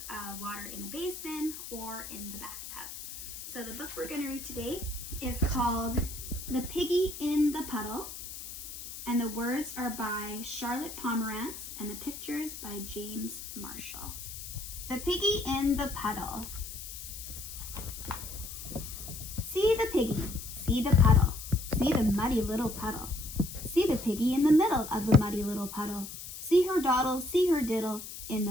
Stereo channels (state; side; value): noise; left; hiss, 10 dB below the sound